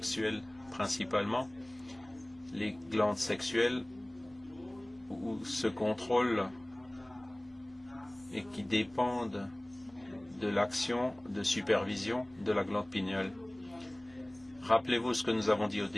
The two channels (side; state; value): right; noise; hum, 27 dB below the sound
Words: principalement. Les glandes sexuelles où se contrôlent et qui dépendent de l'action de supervision de la glande pinéale. Rappelez-vous ce que nous avons dit au